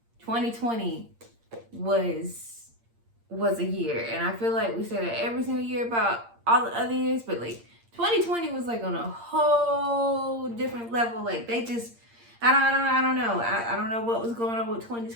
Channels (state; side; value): late; left; 8.7 ms